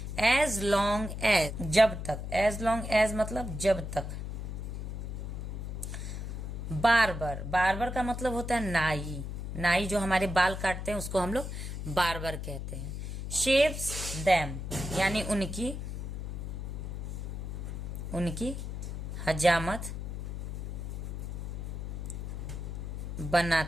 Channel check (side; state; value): left; noise; hum, 5 dB below the sound